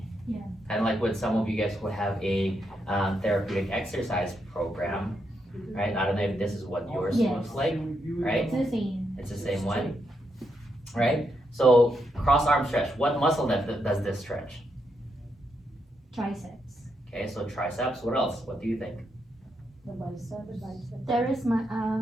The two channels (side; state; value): both; normal; correlation 0.81